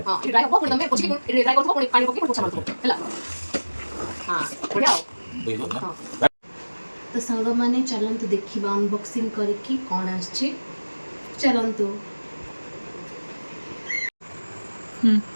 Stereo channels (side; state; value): both; inverted; correlation -1.00